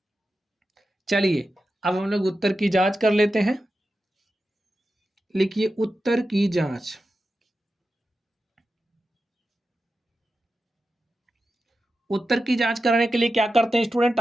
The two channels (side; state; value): both; normal; correlation 0.91